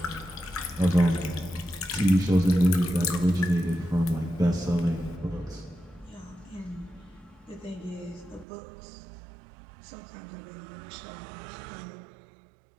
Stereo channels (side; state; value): left; drops out; at 8.5 s